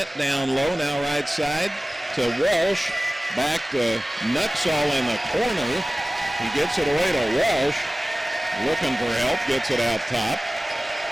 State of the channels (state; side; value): normal; both; correlation 0.97